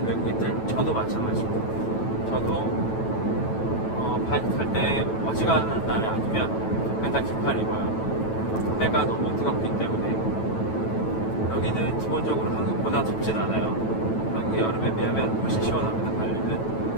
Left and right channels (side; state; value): right; late; 9.1 ms